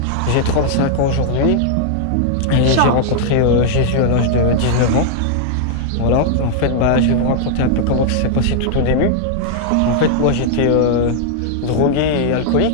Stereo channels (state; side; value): different; both; correlation -0.01